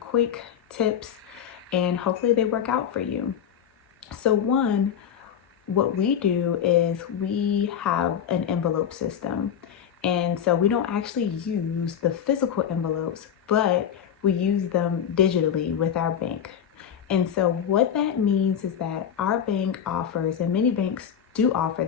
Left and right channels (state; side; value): quieter; right; 8.6 dB